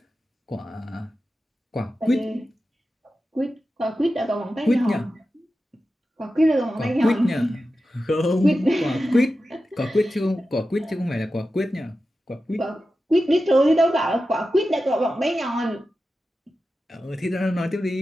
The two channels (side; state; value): both; normal; correlation 0.92